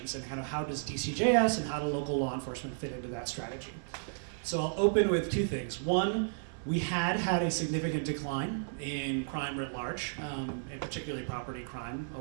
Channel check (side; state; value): left; silent; digital silence